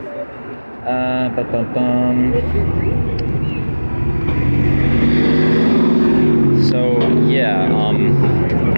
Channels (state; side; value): inverted; both; correlation -1.00